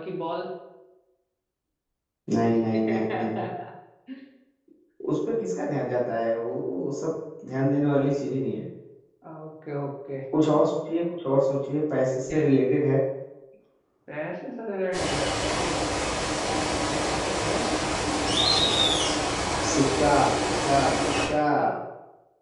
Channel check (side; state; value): both; identical; correlation 1.00